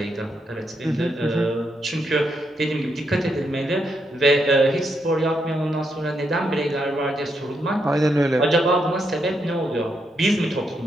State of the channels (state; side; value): normal; both; correlation 0.80